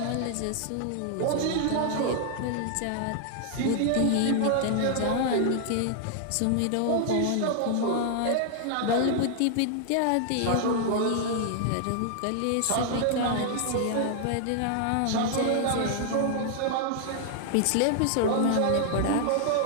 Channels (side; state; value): both; different; correlation 0.00